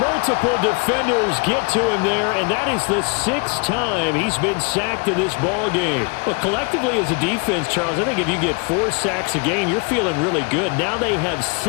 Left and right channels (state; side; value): quieter; right; 32.1 dB